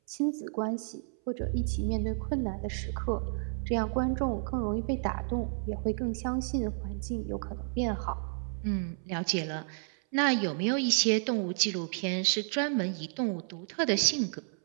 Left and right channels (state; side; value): silent; left; 57 dB below the other